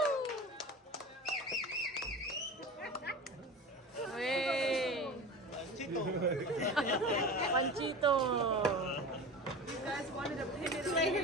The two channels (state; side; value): normal; both; correlation 0.32